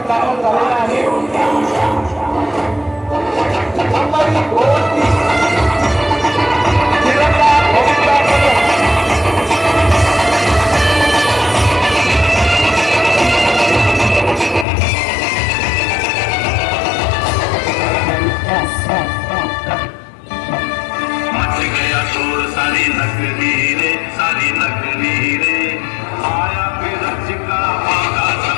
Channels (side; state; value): right; drops out; at 14.7 s